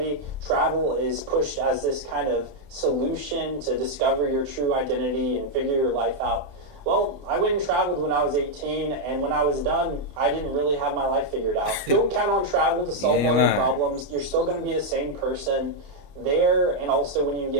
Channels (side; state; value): left; late; 29 ms